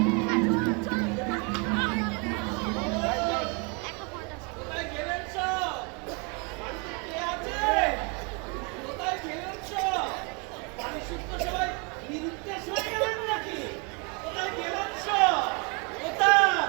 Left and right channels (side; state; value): left; quieter; 33.1 dB